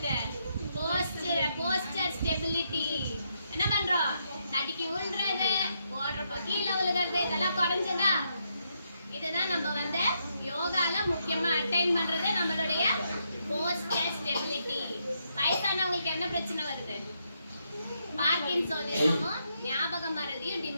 Poster stability. என்ன பண்றோம்? தடிக்கி விழுறது, ஓடுறப்ப கீழே விழுகிறது, இதெல்லாம் குறைஞ்சதா? இதுதான் நம்ம வந்து யோகால முக்கியமா அட்டைன் பண்றது நம்மளுடைய போஸ்டர் ஸ்டெபிலிட்டி. வயசானவங்களுக்கு என்ன பிரச்சனை வருது? பார்க்கின்சோனிசமும் ஞாபக மறதியும்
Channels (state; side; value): inverted; both; correlation -0.79